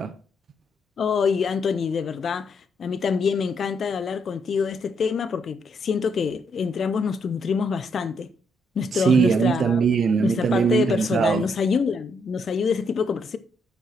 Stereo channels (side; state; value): both; normal; correlation 0.74